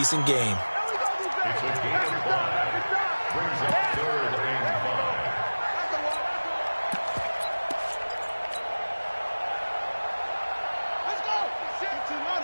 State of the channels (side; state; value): both; inverted; correlation -1.00